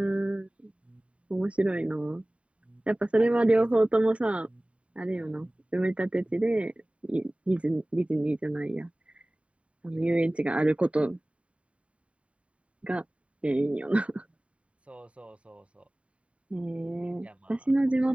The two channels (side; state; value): left; late; 0.063 ms